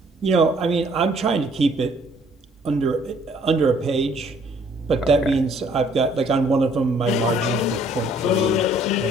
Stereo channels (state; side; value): normal; both; correlation 0.61